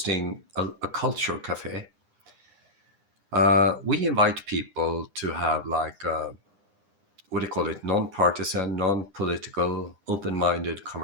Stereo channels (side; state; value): left; late; 9.9 ms